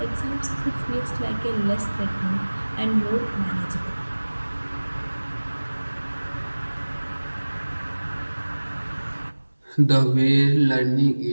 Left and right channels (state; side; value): inverted; both; correlation -1.00